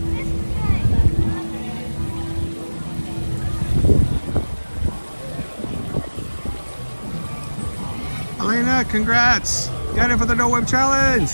Elena, congrats! Got it for the No Whip Challenge!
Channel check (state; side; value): inverted; both; correlation -1.00